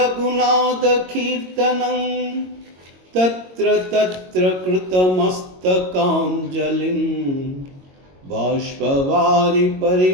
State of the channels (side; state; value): left; late; 22 ms